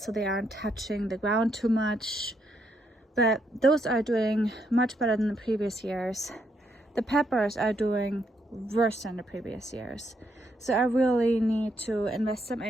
so they aren't touching the ground too much, but those are doing much better than the previous years. The peppers are doing worse than the previous years. So I really need to invest some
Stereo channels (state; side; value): normal; both; correlation 0.76